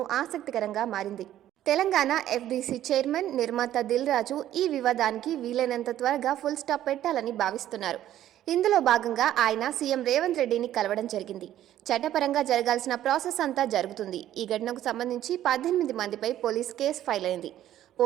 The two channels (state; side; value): quieter; left; 12.3 dB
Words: ఆసక్తికరంగా మారింది. తెలంగాణ ఎఫ్డీసీ చైర్మన్, నిర్మాత దిల్ రాజు ఈ వివాదానికి వీలైనంత త్వరగా ఫుల్ స్టాప్ పెట్టాలని భావిస్తున్నారు. ఇందులో భాగంగా ఆయన సీఎం రేవంత్ రెడ్డిని కలవడం జరిగింది. చట్టపరంగా జరగాల్సిన ప్రాసెస్ అంతా జరుగుతుంది. ఈ ఘటనకు సంబంధించి 18 మందిపై పోలీస్ కేసు ఫైల్ అయింది.